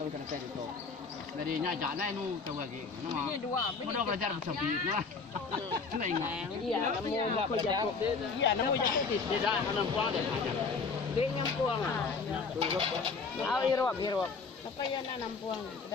kena naik itu. Dari nyajak na inu tahu lagi. Ini dua. Mudah belajar bersama lah. Kena ingat. Iya, namu belajar. Iya, namu jadi tidak akan puang deh. Dia nyampuang. Ah, irwap. Apa ya nampuang,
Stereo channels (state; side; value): quieter; right; 4.7 dB